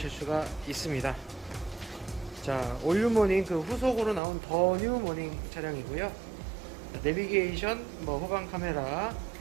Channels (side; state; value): left; drops out; at 4.2 s